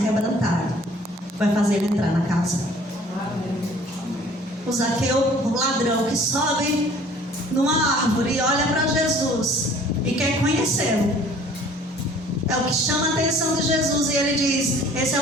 vai fazer ele entrar na casa. O Zaqueu, o ladrão que sobe numa árvore e olha para Jesus e quer conhecê-lo, é o que chama a atenção de Jesus. E ele diz: esse é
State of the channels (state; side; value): normal; both; correlation 0.52